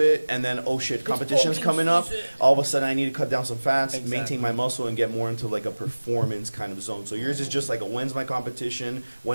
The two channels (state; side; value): inverted; both; correlation -1.00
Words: and then oh shit, competition's coming up. All of a sudden, I need to cut down some fats, Exactly. maintain my muscle, and get more into like a performance kind of zone. So yours is just like, when's my competition?